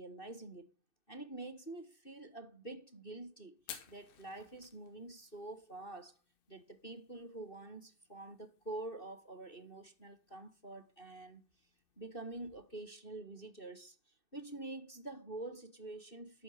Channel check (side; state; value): right; late; 2.6 ms